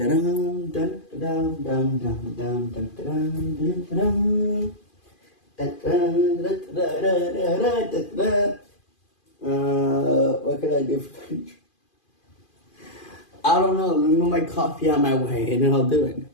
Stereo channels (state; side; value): late; right; 2.4 ms